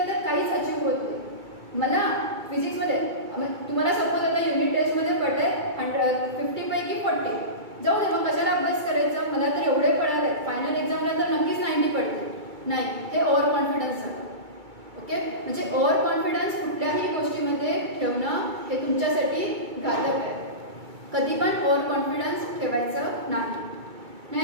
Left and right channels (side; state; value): left; late; 2.3 ms